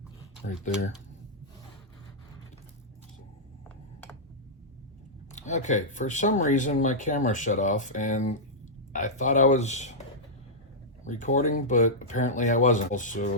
right there. Okay, for some reason my camera shut off and I thought I was recording, but apparently I wasn't.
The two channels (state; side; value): normal; both; correlation -0.09